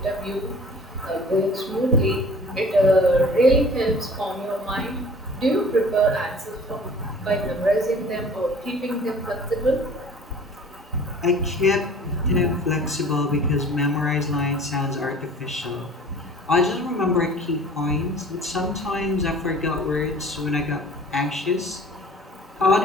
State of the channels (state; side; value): normal; both; correlation 0.47